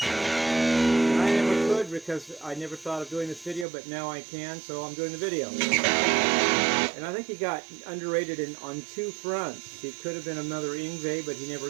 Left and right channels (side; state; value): left; drops out; at 3.7 s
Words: I never could because I never thought of doing this video, but now I can, so I'm doing the video. And I think he got underrated on two fronts. He could have been another Yngwie, but he